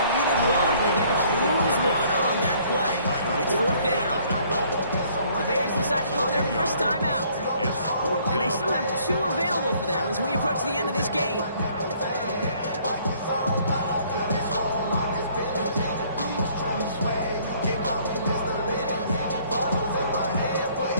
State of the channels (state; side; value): inverted; both; correlation -0.60